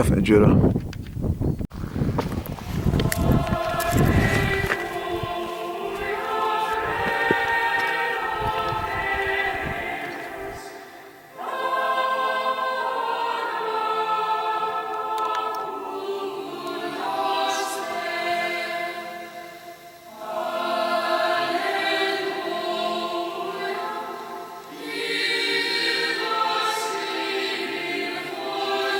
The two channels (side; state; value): both; identical; correlation 1.00